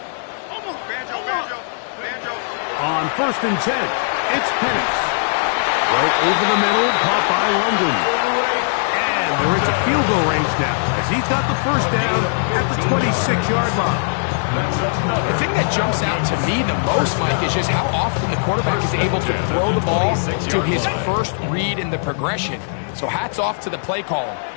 On 1st and 10, it's Penix. Right over the middle, caught by London. And they're into field goal range now, as he's got the first down at the 26-yard line. The thing that jumps out to me the most, Mike, is just how often the quarterback is able to throw the ball to his first read in the progression. So hats off to the play caller.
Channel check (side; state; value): right; silent; 56 dB below the other